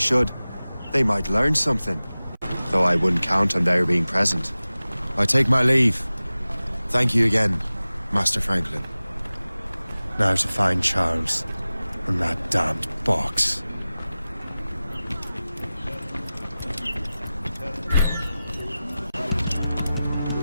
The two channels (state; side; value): inverted; both; correlation -0.97